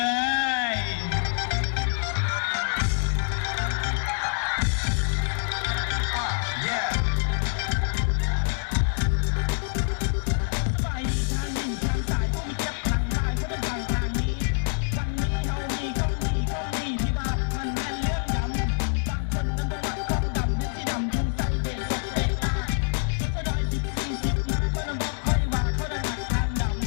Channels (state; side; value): silent; right; digital silence